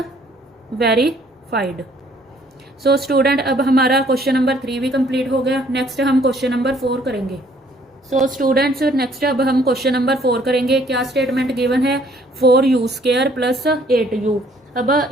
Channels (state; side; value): normal; both; correlation 0.61